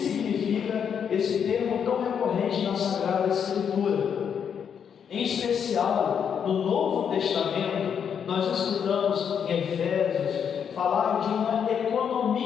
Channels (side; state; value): right; quieter; 7.6 dB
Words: esse termo tão recorrente na Sagrada Escritura. Em especial, no Novo Testamento, nós escutamos em Efésios falar de uma